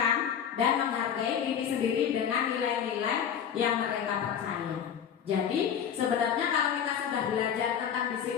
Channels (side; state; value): right; quieter; 8.3 dB